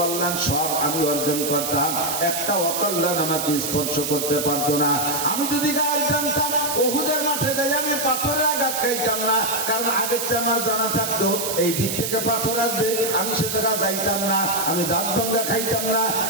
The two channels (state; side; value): noise; right; hiss, 3 dB below the sound